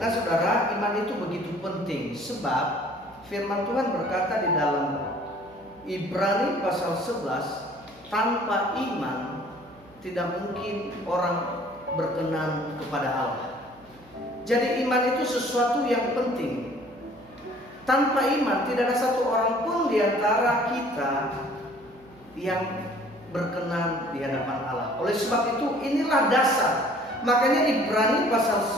saudara, iman itu begitu penting sebab firman Tuhan berkata di dalam Ibrani pasal 11, tanpa iman tidak mungkin orang berkenan kepada Allah. Jadi iman itu sesuatu yang penting. Tanpa iman tidak ada satu orang pun di antara kita yang berkenan di hadapan Allah. Oleh sebab itu inilah dasar. Makanya Ibrani pasal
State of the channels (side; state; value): right; noise; hum, 27 dB below the sound